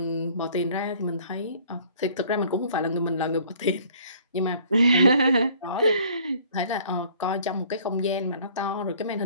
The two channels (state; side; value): inverted; both; correlation -0.56